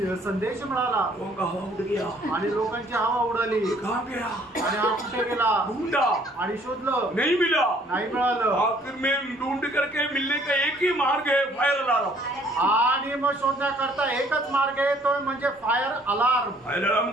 संदेश मिळाला। लोगों का हवा उड़ गया आणि लोकांची हवा उडाली। कहाँ गया? आणि हा कुठे गेला? ढूंढा आणि शोधलं, नहीं मिला। नाही मिळालं। आखिर में ढूंढ करके मिलने का एक ही मार्ग है, फायर अलार्म। आणि मग शोधण्याकरता एकच मार्ग आहे, तो म्हणजे फायर अलार्म। फायर अलार्म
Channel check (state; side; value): normal; both; correlation 0.60